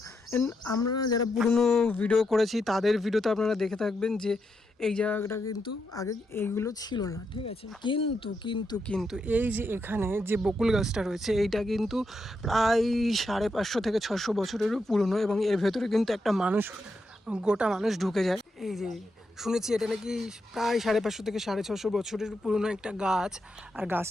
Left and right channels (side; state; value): both; normal; correlation 0.83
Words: আমরা যারা পুরনো ভিডিও করেছি তাদের ভিডিওতে আপনারা দেখে থাকবেন যে এই জায়গাটা কিন্তু আগে এইগুলো ছিল না, ঠিক আছে। কিন্তু কিন্তু কিন্তু এই যে এখানে যে বকুল গাছটা রয়েছে, এইটা কিন্তু প্রায় 550 থেকে 600 বছরেরও পুরনো, এবং এর ভেতরে কিন্তু একটা মানুষ, গোটা মানুষ ঢুকে যায়। এই যে শুনেছি এটা নাকি প্রায় 550 থেকে 650 বছরের পুরনো একটা গাছ, আর